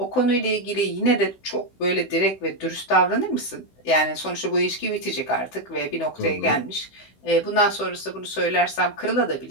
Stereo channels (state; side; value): late; right; 16 ms